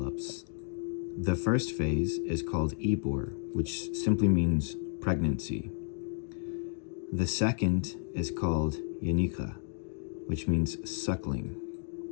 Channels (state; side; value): silent; right; 56 dB below the other